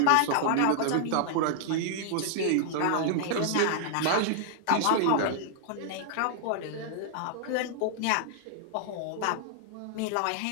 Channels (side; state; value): both; different; correlation -0.01